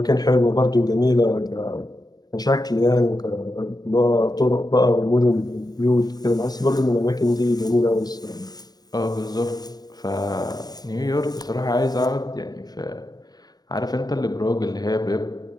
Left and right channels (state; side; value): late; right; 0.19 ms